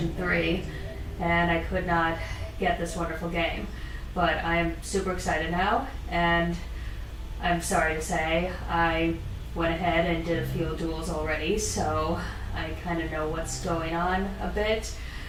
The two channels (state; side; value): identical; both; correlation 1.00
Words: 3 and I could not get this wonderful game. But I am super excited now, and I'm sorry to say I went ahead and did a few duels already, so I kind of know what's going on a bit.